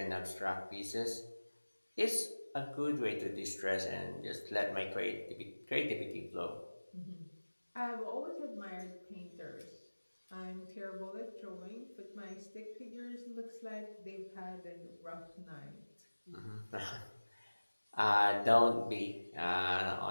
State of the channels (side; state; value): both; inverted; correlation -1.00